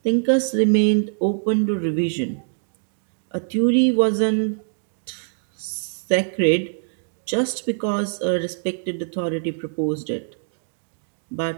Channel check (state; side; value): silent; left; digital silence